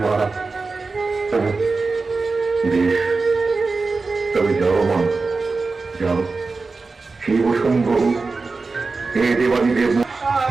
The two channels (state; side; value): quieter; left; 4.0 dB